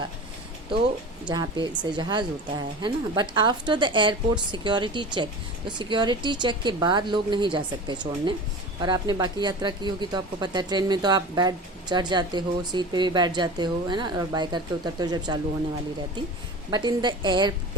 तो जहाँ पे से जहाज़ होता है ना। But after the airport security check, तो सिक्योरिटी चेक के बाद लोग नहीं जा सकते छोड़ने। और आपने बाकी यात्रा की होगी तो आपको पता है, ट्रेन में तो आप बैठ चढ़ जाते हो, सीट पे भी बैठ जाते हो, है ना, और बाय करके उतरते हो जब चालू होने वाली रहती। But in the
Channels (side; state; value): both; normal; correlation 0.34